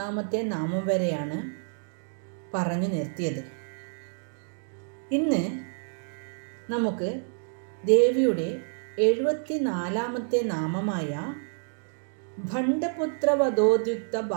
നാമം വരെയാണ് പറഞ്ഞു നിർത്തിയത്. ഇന്ന് നമുക്ക് ദേവിയുടെ 74-ാമത്തെ നാമമായ ഭണ്ഡപുത്രവധോദ്യുക്ത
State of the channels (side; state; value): left; silent; digital silence